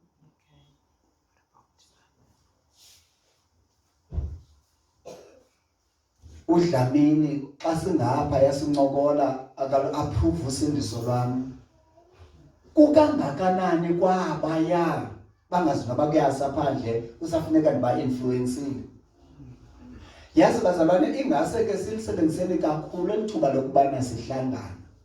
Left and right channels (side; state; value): both; identical; correlation 1.00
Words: uDlamini xa singapha yasincokola akalu-approve usindiso lwami kukangakanani kwabaya bangazinaba kuyasa phandle usafuneka ndiba-influensile. Yazi bazalwane ingase ke silisebenziseni kakhulu elithuba lokubana sihlangana